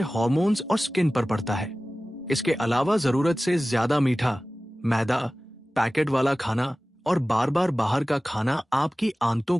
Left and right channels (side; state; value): both; normal; correlation 0.97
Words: हार्मोन्स और स्किन पर पड़ता है। इसके अलावा जरूरत से ज्यादा मीठा, मैदा, पैकेट वाला खाना और बार बार बाहर का खाना आपकी आंतों